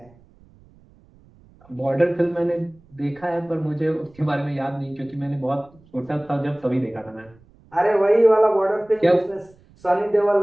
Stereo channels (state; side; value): noise; right; rumble, 28 dB below the sound